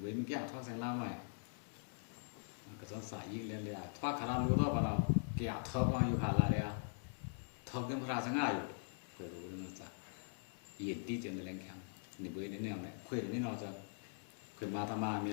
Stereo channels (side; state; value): right; silent; digital silence